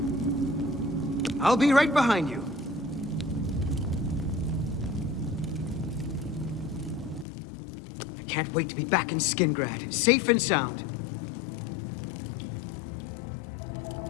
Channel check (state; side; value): drops out; right; at 7.2 s